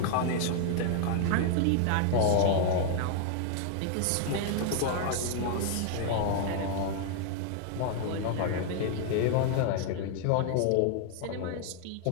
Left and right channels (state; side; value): different; both; correlation 0.00